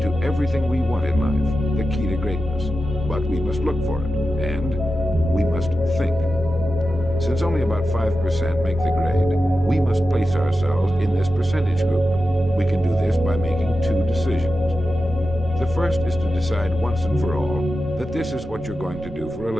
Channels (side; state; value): right; noise; rumble, 15 dB below the sound